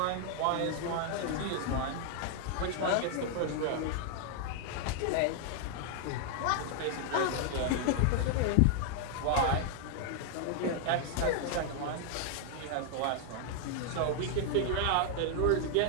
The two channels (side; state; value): both; different; correlation 0.00